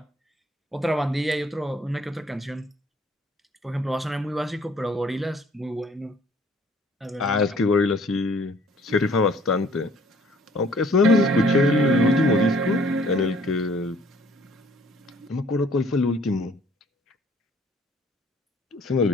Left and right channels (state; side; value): normal; both; correlation 0.58